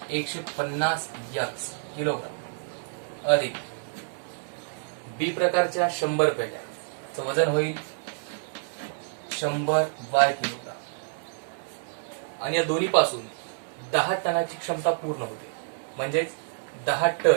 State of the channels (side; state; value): left; silent; digital silence